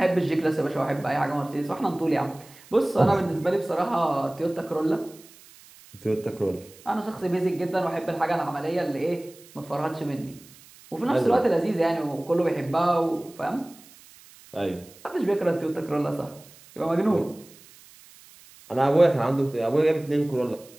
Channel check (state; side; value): noise; right; hiss, 23 dB below the sound